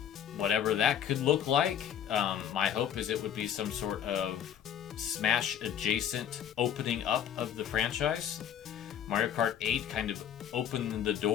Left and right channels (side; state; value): right; quieter; 9.3 dB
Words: whatever that could look like. My hope is it would be some sort of Smash adjacent opening up of the franchise. Mario Kart 8 kind of opened the